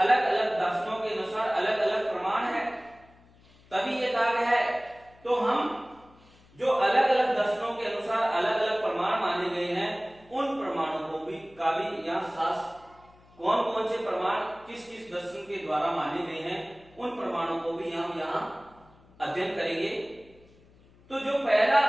अलग दर्शनों के अनुसार अलग अलग प्रमाण है, तभी यह कहा गया है। तो हम जो अलग अलग दर्शनों के अनुसार अलग अलग प्रमाण माने गए हैं, उन प्रमाणों को भी का भी यहाँ शास्त्र कौन कौन से प्रमाण किस किस दर्शन के द्वारा माने गए हैं, उन प्रमाणों को भी हम यहाँ अध्ययन करेंगे। तो जो पहला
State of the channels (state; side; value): noise; left; hum, 28 dB below the sound